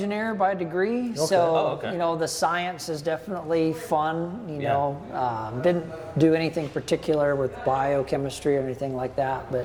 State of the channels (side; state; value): both; identical; correlation 1.00